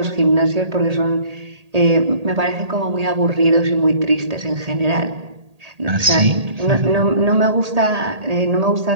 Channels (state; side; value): late; left; 1.8 ms